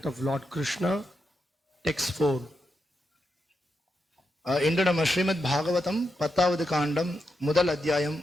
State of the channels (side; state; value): both; normal; correlation 0.85